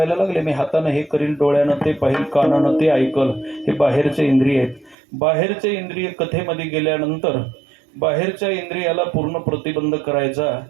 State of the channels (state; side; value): drops out; left; at 5.0 s